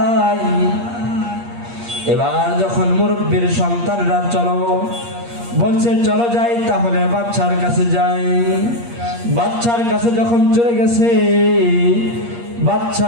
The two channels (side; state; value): left; late; 8.5 ms